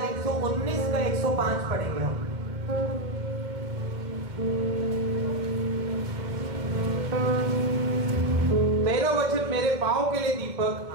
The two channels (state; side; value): late; left; 2.2 ms